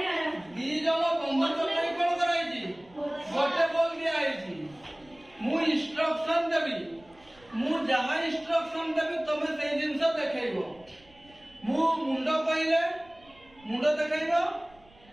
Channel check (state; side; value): noise; right; rumble, 28 dB below the sound